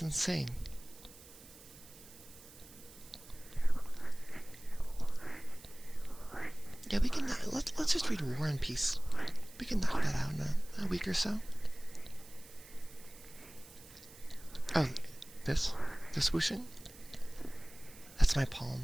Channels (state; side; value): noise; right; hiss, 20 dB below the sound